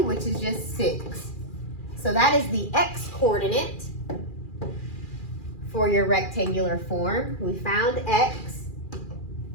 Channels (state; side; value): late; right; 2.4 ms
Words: which is just 6. So that is the x coordinate for your rectangular form. We found x.